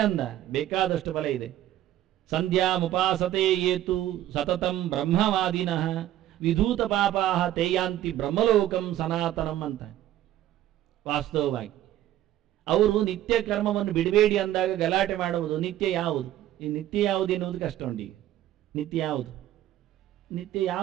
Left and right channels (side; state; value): left; quieter; 13.1 dB